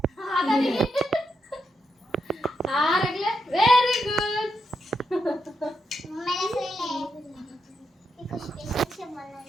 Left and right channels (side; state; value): both; normal; correlation 0.83